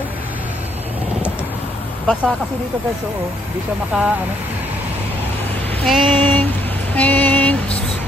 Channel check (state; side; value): normal; both; correlation 0.70